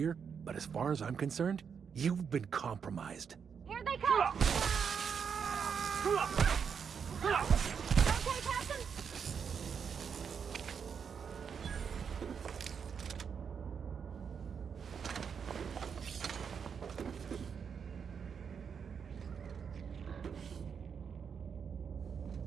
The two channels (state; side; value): quieter; left; 6.8 dB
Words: but as far as I'm concerned, you've been compromised. Here they come! Okay, Captain?